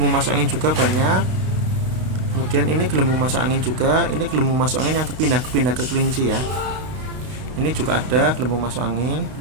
masuk angin juga banyak. Kemudian ini gelembung masuk angin juga. Ini gelembung masuk angin yang kepindah ke kelinci ya. Ini juga ada gelembung masuk angin.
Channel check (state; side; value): late; left; 32 ms